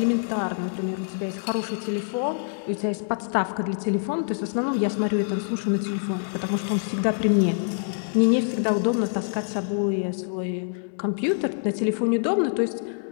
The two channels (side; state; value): right; silent; digital silence